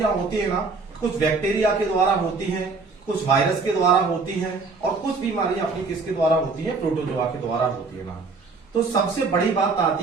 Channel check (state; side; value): quieter; left; 4.2 dB